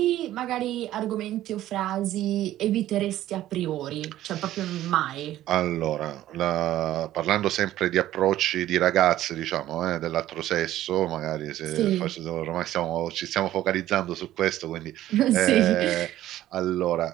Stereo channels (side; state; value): left; quieter; 13.7 dB